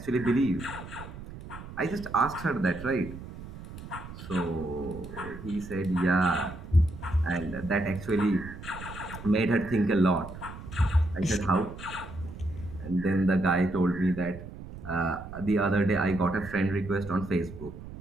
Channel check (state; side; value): noise; right; rumble, 13 dB below the sound